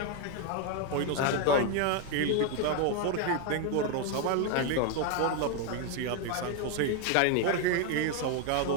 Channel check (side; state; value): both; different; correlation 0.01